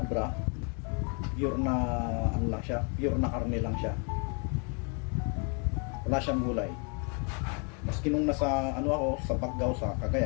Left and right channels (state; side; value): quieter; right; 37.6 dB